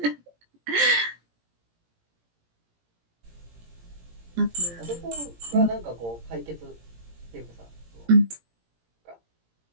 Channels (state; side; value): late; left; 17 ms